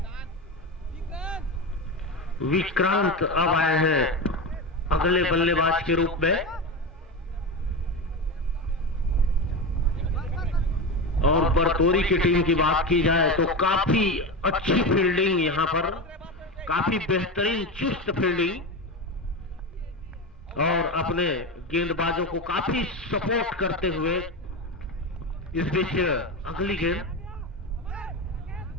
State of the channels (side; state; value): both; normal; correlation 0.20